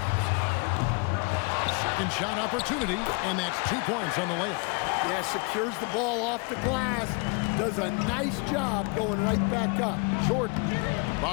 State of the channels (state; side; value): quieter; right; 32.3 dB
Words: Second shot opportunity, and that's 2 points on the layup. Yeah, secures the ball off the glass. Does a nice job going right back up. Jordan.